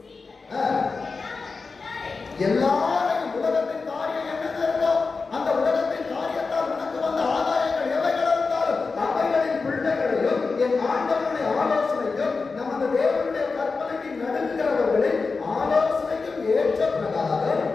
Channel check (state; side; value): quieter; right; 4.3 dB